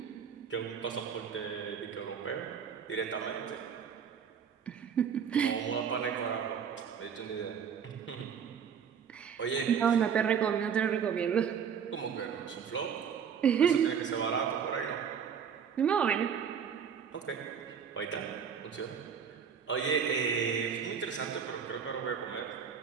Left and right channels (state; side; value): quieter; left; 7.3 dB